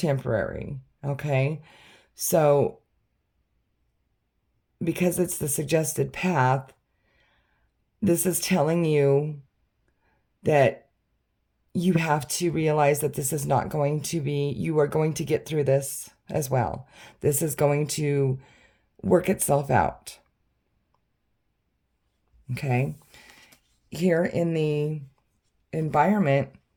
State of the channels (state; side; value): identical; both; correlation 1.00